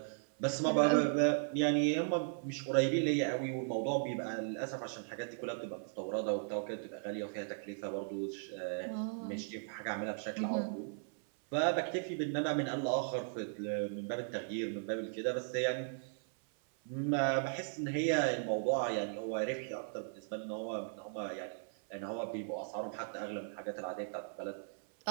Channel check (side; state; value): left; silent; 53 dB below the other